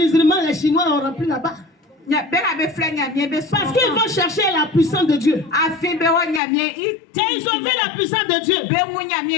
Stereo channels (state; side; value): drops out; right; at 6.4 s